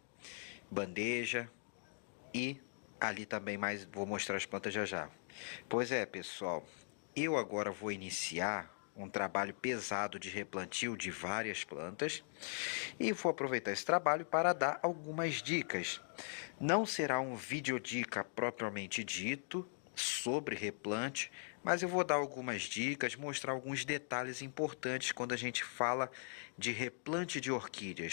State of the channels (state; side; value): silent; right; digital silence